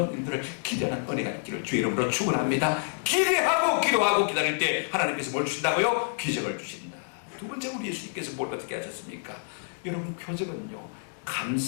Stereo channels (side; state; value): right; silent; digital silence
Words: 일들을 기대하는 은혜가 있기를 주의 이름으로 축원합니다. 기대하고 기도하고 기다릴 때 하나님께서 뭘 주신다고요? 기적을 주신다. 두 번째, 우리 예수님께서 뭘 어떻게 하셨습니까? 여러분, 표적은요,